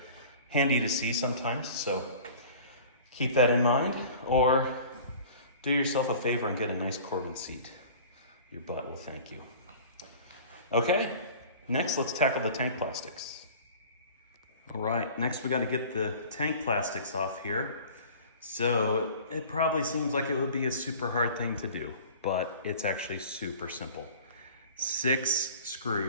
handy to see sometimes. So keep that in mind, or do yourself a favor and get a nice Corbin seat. Your butt will thank you. Okay, next let's tackle the tank plastics. All right, next we got to get the tank plastics off here. So it probably seems like it would be a super hard thing to do, but it's actually super simple. 6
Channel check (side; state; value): both; inverted; correlation -0.43